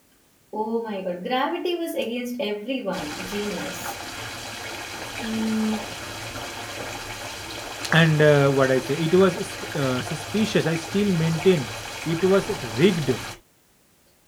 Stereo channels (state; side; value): identical; both; correlation 1.00